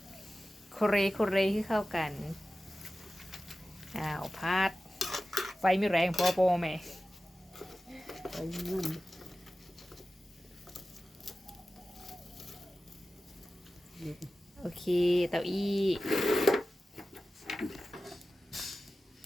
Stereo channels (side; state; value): both; normal; correlation 0.95